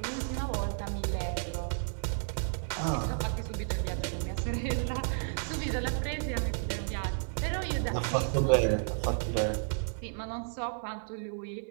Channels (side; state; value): left; silent; 56 dB below the other